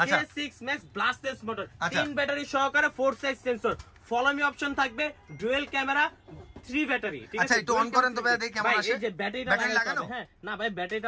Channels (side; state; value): both; identical; correlation 1.00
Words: K6 Max ব্লাস্টলেস motor, 3 battery সহকারে 4 size sensor, follow me option থাকবে, ডুয়াল ক্যামেরা, 3 ব্যাটারি। ঠিক আছে, আচ্ছা একটু অন করেন তো ভাই, দেখি কেমন আসে। এই যে ব্যাটারিটা লাগানো, হ্যাঁ না ভাই